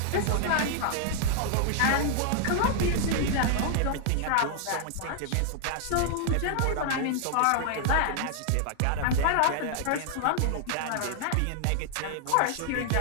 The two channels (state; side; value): different; both; correlation 0.00